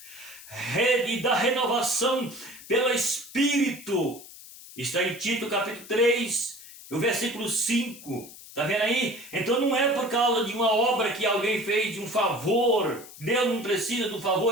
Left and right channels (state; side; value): noise; left; hiss, 17 dB below the sound